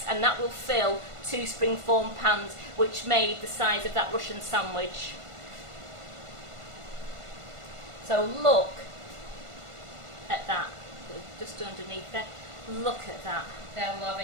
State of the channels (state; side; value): late; left; 1.5 ms